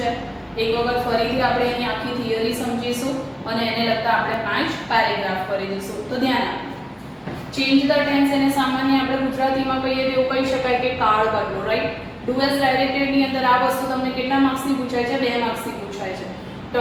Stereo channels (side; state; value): both; identical; correlation 1.00